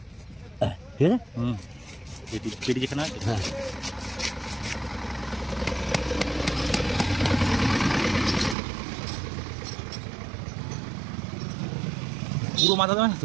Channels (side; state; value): left; drops out; at 8.6 s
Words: ঠিক আছে, পেটি যেখানে আছে। হ্যাঁ পুরো মাথা দেবে না